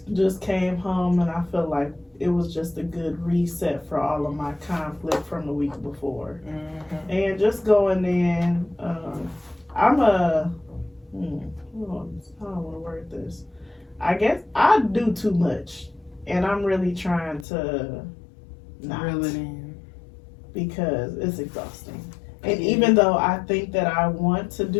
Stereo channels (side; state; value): right; drops out; at 17.4 s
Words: just came home, and I feel like it was just a good reset for all of my conflict from the week before. And just going in, I'm a, I don't want to word this. I guess I do too much, and I'm really trying to not, Reel it in. because it's exhausting. And even though I think that I want to